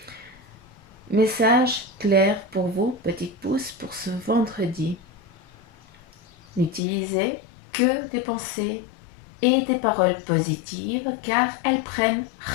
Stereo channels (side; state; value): right; drops out; at 6.8 s